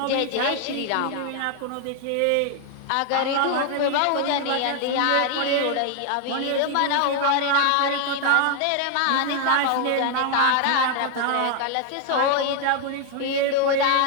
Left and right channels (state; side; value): different; both; correlation 0.00